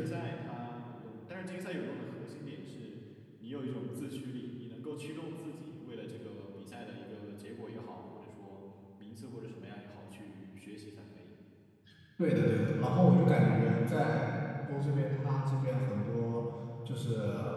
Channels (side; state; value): both; identical; correlation 1.00